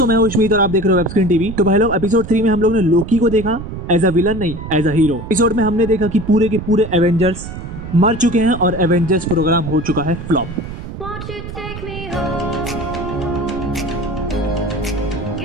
मैं हूं उस्मीत और आप देख रहे हो वेब स्क्रीन टीवी। तो भाई लोग एपिसोड 3 में हम लोग ने लोकी को देखा एज अ विलन नहीं एज अ हीरो। एपिसोड में हमने देखा कि पूरे के पूरे एवेंजर्स मर चुके हैं और एवेंजर्स प्रोग्राम हो चुका है flop. Won't you take me home?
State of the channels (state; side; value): noise; right; rumble, 9 dB below the sound